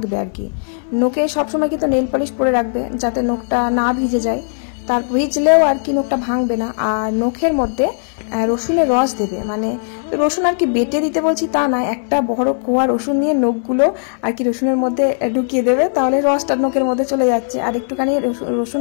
আর কি। নখে সবসময় কিন্তু নেল পলিশ পরে রাখবে, যাতে নখটা না ভিজে যায়, তার ভিজলেও আর কি নখটা ভাঙবে না। আর নখের মধ্যে রসুনের রস দেবে, মানে রসুন আর কি বেটে দিতে বলছি তা না, একটা বড় কোয়া রসুন নিয়ে নখগুলো আর কি রসুনের মধ্যে ঢুকিয়ে দেবে, তাহলে রসটা নখের মধ্যে চলে যাচ্ছে। আর একটুখানি রসুন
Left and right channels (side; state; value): right; silent; digital silence